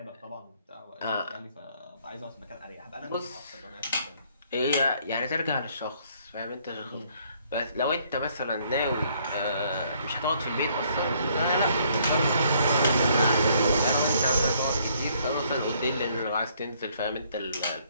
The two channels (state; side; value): inverted; both; correlation -0.66